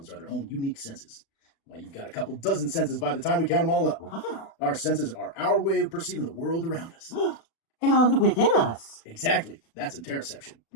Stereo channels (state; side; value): late; right; 36 ms